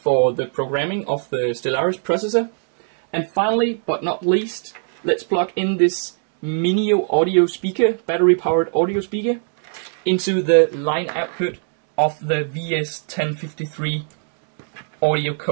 the programming of the Stellaris processor. And finally, but not least, let's plug in this Minio audio speaker, battery powered audio speaker, into the line output of the VS1053 Audio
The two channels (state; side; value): silent; left; digital silence